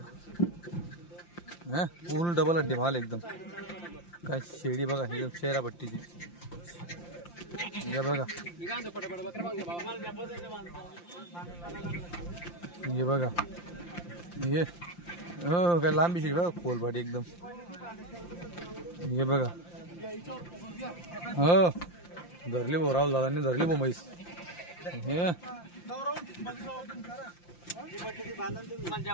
फुल डबल हड्डी माल एकदम. काय शेडी बघा एकदम चेहरा पट्टीची. हे बघा. हे बघा ये हो काय लांबी शेडी बघा खोलपाटी एकदम. हे बघा हो धरली भाऊ. राहुल दादांनी धरली भाऊ म्हैस. हे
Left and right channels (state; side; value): late; right; 5.8 ms